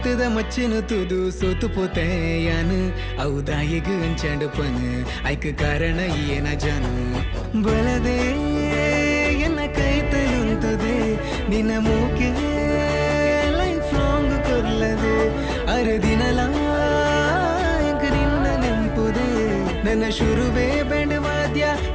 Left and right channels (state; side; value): identical; both; correlation 1.00